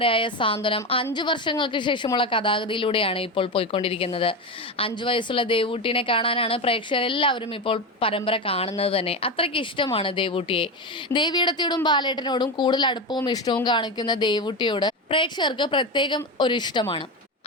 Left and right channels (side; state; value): both; normal; correlation 0.17